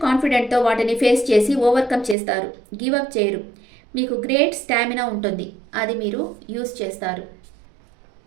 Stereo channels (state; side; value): drops out; left; at 2.1 s